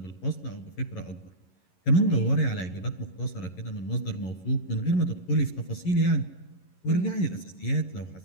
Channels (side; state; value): right; late; 11 ms